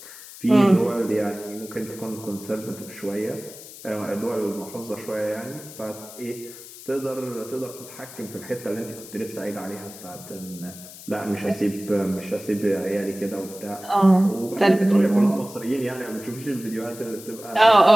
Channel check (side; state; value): left; noise; hiss, 16 dB below the sound